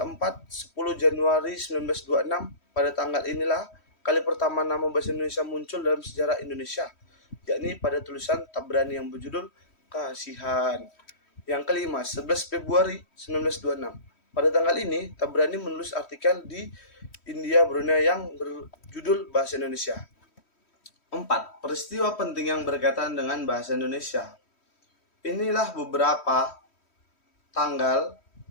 10 Januari 1926, pada tanggal inilah kali pertama nama bahasa Indonesia muncul dalam sejarah Indonesia. yakni pada tulisan Tabrani yang berjudul Kasihan. Yang kelima, 11 Februari 1926. Pada tanggal ini, Tabrani menulis artikel di India Brunei yang berjudul Bahasa Indonesia. 4. Peristiwa penting yang berkaitan dengan bahasa Indonesia. Inilah beberapa tanggal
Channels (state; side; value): late; right; 3.1 ms